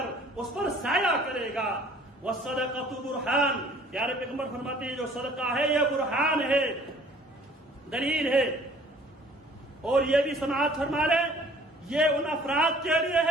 اس پر سایہ کرے گا۔ والصدقۃ برہان، پیارے پیغمبر فرماتے ہیں جو صدقہ ہے یہ برہان ہے، دلیل ہے۔ اور یہ بھی سماعت فرما لیں یہ ان افراد کے لیے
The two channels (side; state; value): both; normal; correlation 0.53